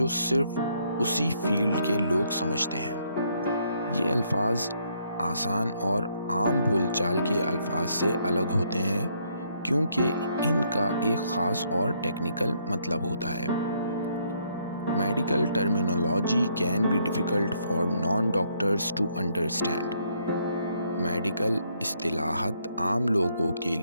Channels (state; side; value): inverted; both; correlation -0.71